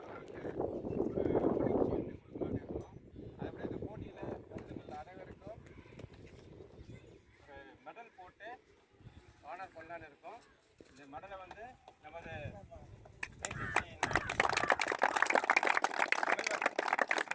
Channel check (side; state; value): both; identical; correlation 1.00